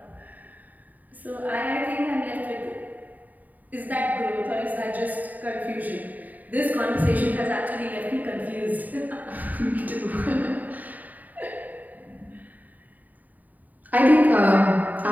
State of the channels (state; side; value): late; left; 0.080 ms